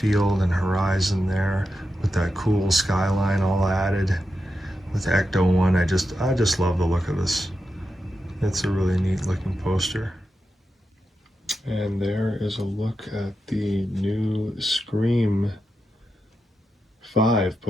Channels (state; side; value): normal; both; correlation 0.88